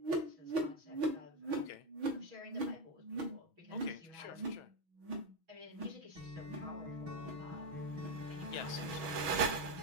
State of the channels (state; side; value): late; left; 6.2 ms